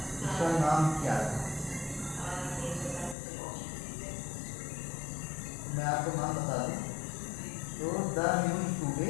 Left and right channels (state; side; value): drops out; right; at 3.2 s